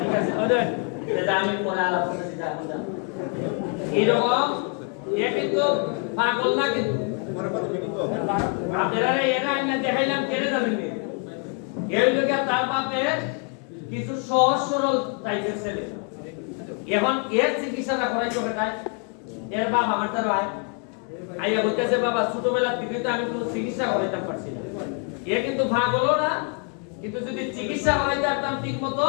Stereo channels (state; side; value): quieter; right; 39.5 dB